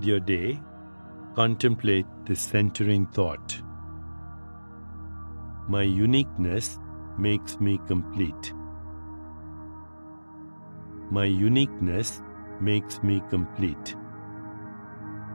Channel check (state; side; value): inverted; both; correlation -1.00